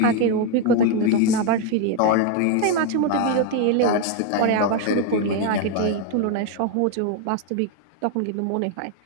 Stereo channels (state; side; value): different; both; correlation 0.01